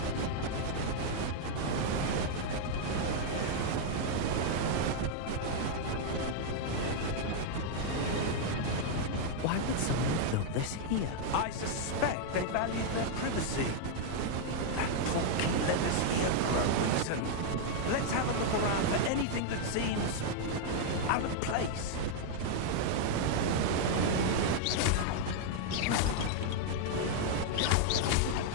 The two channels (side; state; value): both; different; correlation 0.00